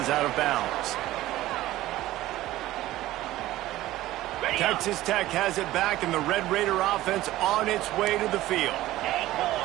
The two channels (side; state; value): left; quieter; 15.8 dB